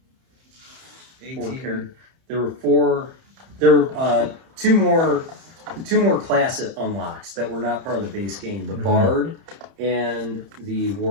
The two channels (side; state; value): left; late; 31 ms